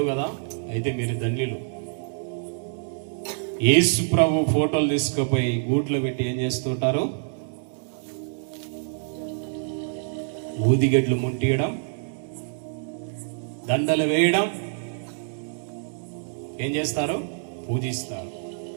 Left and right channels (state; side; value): silent; left; digital silence